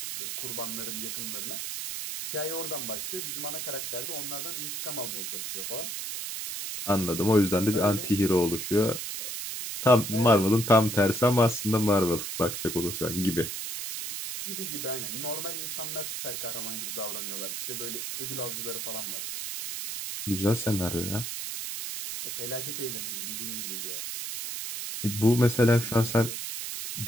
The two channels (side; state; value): right; noise; hiss, 5 dB below the sound